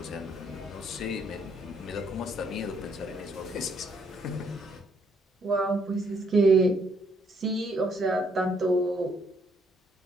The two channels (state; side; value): normal; both; correlation 0.70